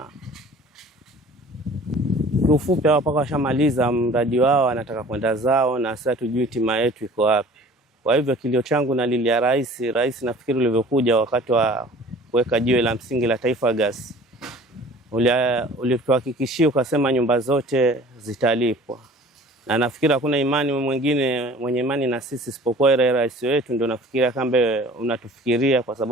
kiufupi hao paka washamaliza mradi wao, wanataka kwenda zao, na sasa tujui tima yetu iko wapi. Kwa hivyo kilio changu nalilia rais nafikiri ulivyokuja wakati wa kuweka jiwe la msingi la Taifa Gas, ulituhakikishia ukasema nyumba zote zitalipwa, na nafikiri hakuna imani mwingine mwenye imani na sisi isipokuwa rais wetu. Ndio nafikiria kambe unatufikiria, kwa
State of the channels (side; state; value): both; normal; correlation 0.47